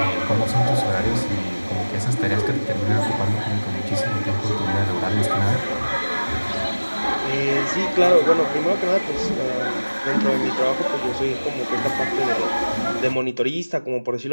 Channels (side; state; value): both; inverted; correlation -1.00